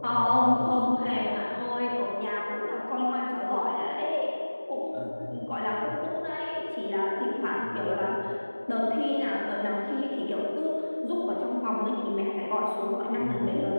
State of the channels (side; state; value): both; inverted; correlation -1.00